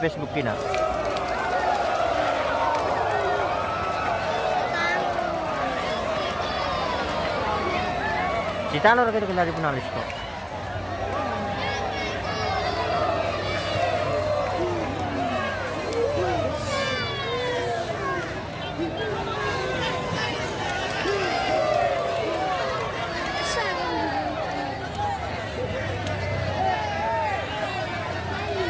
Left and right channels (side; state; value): both; identical; correlation 1.00